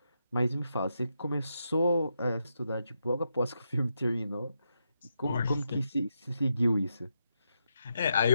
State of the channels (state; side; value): inverted; both; correlation -0.84